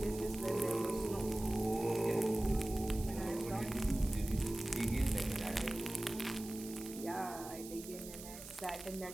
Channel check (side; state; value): right; noise; hiss, 13 dB below the sound